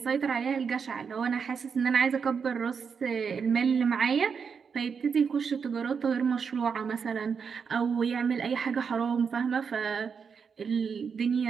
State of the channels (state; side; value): quieter; left; 6.2 dB